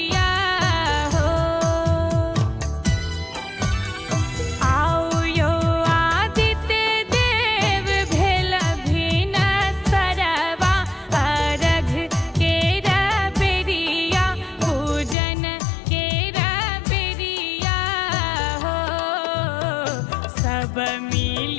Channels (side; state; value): right; drops out; at 15.2 s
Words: हो। आओ यो आदित्य देव भेल भिन सरवा, अर्घ केरा बेरिया पूजन केरा बेरिया हो। सब